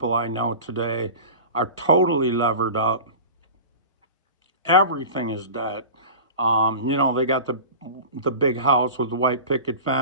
I know today are totally levered up. Everything is debt. They got the big house with the white picket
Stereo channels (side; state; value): both; inverted; correlation -0.35